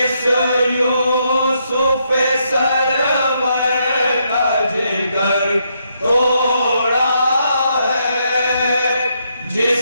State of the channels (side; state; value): both; inverted; correlation -0.77